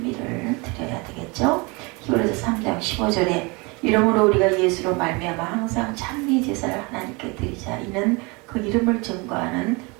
드려야 되겠죠. 히브리서 3장 15절에 이러므로 우리가 예수로 말미암아 항상 찬미 제사를 하나님께 드리자. 이는 그 이름을 증거하는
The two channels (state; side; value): quieter; left; 27.8 dB